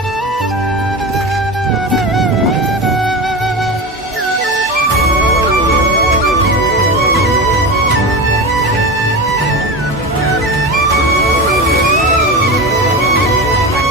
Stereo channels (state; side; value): normal; both; correlation 0.24